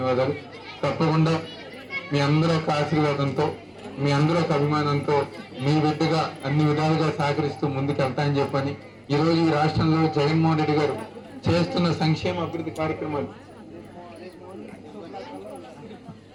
తప్పకుండా మీ అందరూ ఒక ఆశీర్వాదంతో, మీ అందరూ ఒక అభిమానంతో మీ బిడ్డగా అన్ని విధాలుగా సహకరిస్తూ ముందుకు వెళ్తాయని చెప్పని ఈరోజు ఈ రాష్ట్రంలో జగన్మోహన్ రెడ్డి గారు చేస్తున్న సంక్షేమ అభివృద్ధి కార్యక్రమాలు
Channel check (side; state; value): both; identical; correlation 1.00